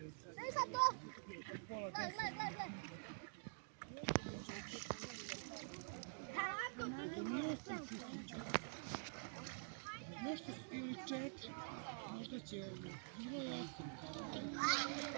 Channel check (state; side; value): silent; left; digital silence